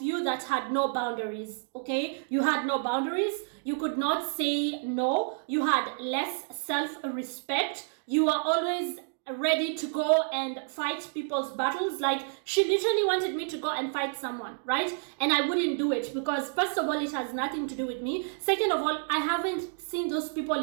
you that had no boundaries, okay? You had no boundaries. You could not say no. You had less self-respect. You were always ready to go and fight people's battles. Like, she literally wanted me to go and fight someone, right? And I wouldn't do it because, first of all, it has nothing to do with me. Second of all, I haven't seen those people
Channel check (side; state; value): left; silent; digital silence